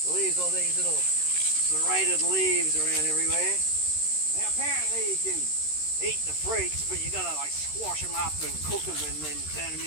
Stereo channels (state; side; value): late; right; 13 ms